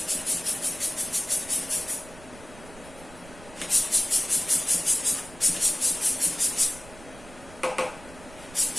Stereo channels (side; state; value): right; noise; rumble, 20 dB below the sound